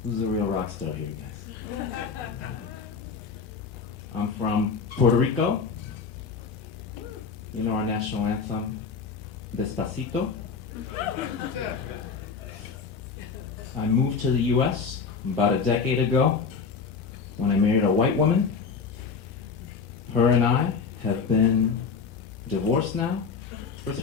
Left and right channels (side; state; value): right; quieter; 5.4 dB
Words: Who's the real rock star here, guys? I'm from Puerto Rico. You know our national anthem, Despacito? I moved to the US about a decade ago when I married a white woman. Her and I have been divorced now for